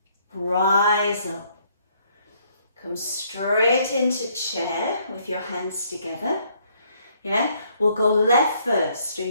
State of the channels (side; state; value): both; inverted; correlation -0.67